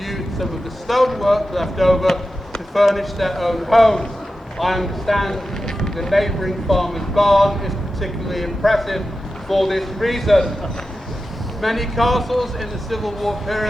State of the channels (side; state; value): both; normal; correlation 0.92